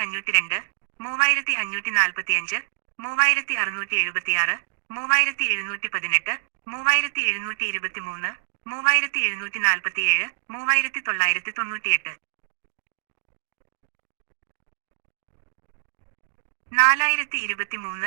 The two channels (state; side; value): silent; left; digital silence